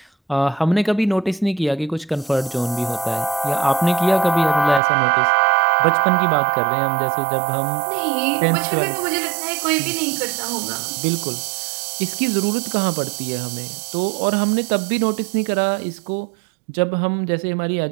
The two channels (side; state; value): left; drops out; at 4.8 s